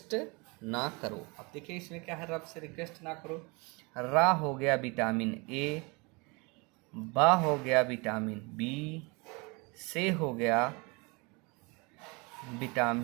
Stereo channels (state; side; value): quieter; left; 28.5 dB